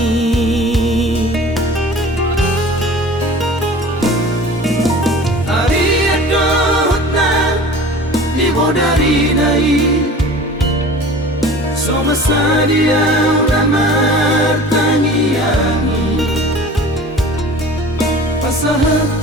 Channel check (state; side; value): normal; both; correlation 0.41